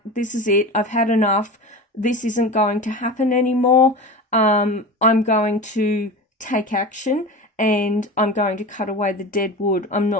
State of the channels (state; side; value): normal; both; correlation 0.30